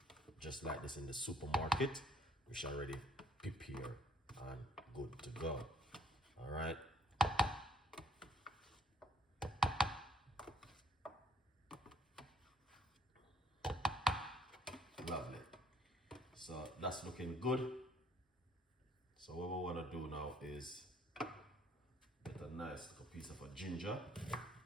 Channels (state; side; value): normal; both; correlation 0.66